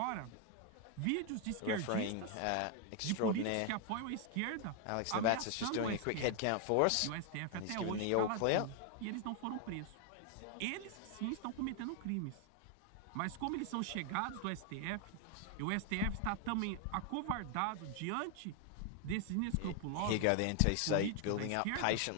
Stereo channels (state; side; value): different; both; correlation 0.00